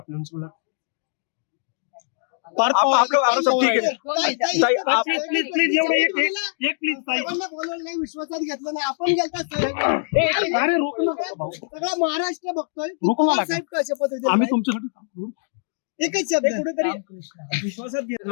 उनसे बोला. पार्थ आप पवार लोग आप सब ठीक है ताई आप प्लीज प्लीज एवढं एक प्लीज ताई. बोलवलं नाही विश्वासात घेतलं नाही आपण गेलता अरे रोक ना भाऊ. सगळा महाराष्ट्र बघतोय रोको ना पवार लागा. साहेब कशा पद्धतीने आम्ही तुमच्यासाठी थांबलो. एकच शब्द कुठेतरी रामकृष्ण विश्वासात घेत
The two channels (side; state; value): right; silent; digital silence